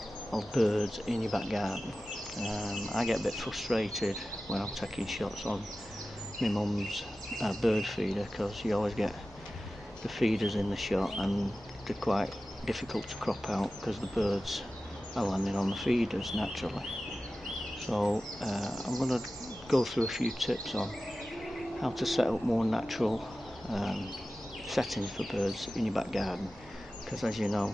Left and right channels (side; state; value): both; normal; correlation 0.95